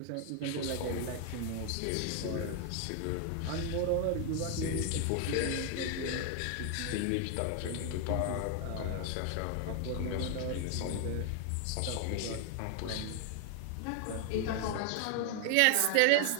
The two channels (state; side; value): different; both; correlation 0.00